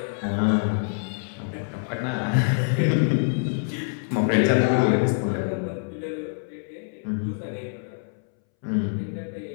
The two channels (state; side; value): silent; right; 61 dB below the other